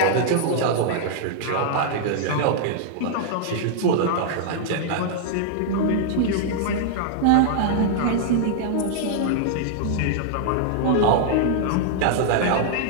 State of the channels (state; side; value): different; both; correlation -0.01